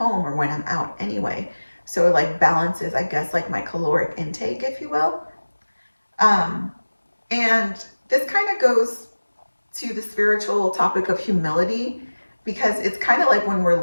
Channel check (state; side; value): inverted; both; correlation -1.00